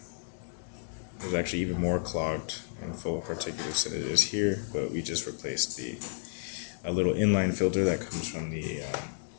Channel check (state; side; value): silent; right; digital silence